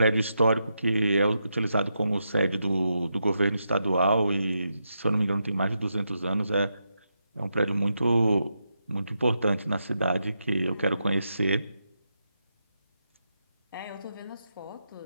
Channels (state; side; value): inverted; both; correlation -0.84